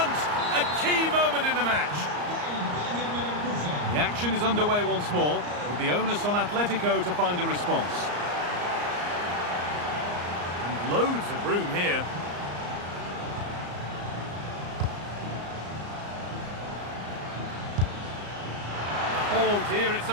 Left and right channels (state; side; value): late; left; 34 ms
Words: A key moment in the match. The action is underway once more, with the onus on Atletico to find a response. Loads of room here. Oh dear, it's